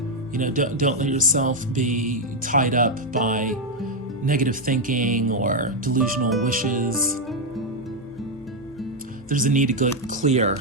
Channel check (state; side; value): normal; both; correlation 0.02